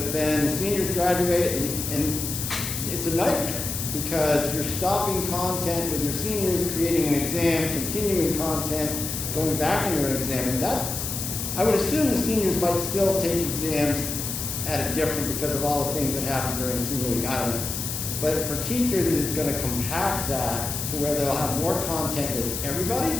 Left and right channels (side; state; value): left; noise; hiss, 4 dB below the sound